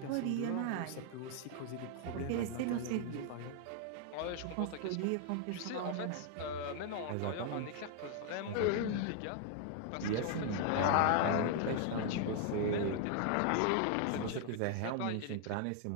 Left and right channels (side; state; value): both; different; correlation 0.00